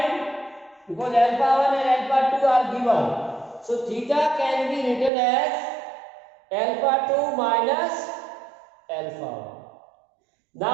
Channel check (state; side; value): drops out; left; at 5.1 s